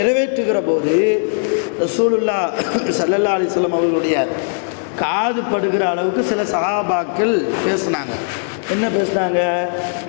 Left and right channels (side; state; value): right; silent; digital silence